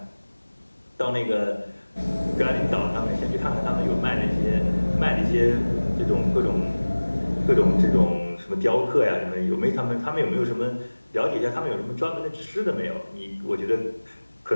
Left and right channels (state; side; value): inverted; both; correlation -1.00